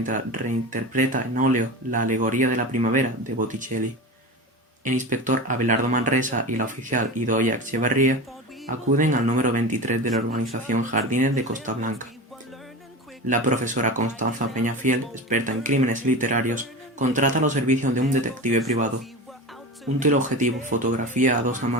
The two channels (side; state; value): both; normal; correlation 0.28